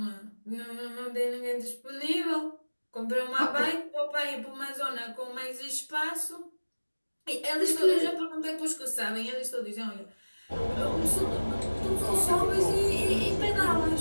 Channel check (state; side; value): inverted; both; correlation -1.00